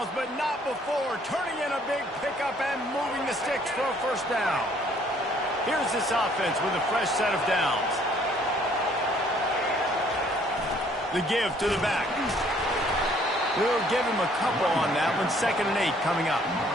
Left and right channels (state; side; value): normal; both; correlation 0.61